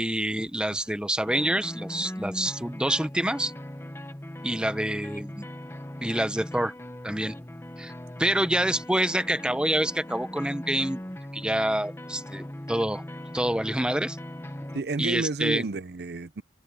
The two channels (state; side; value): normal; both; correlation 0.79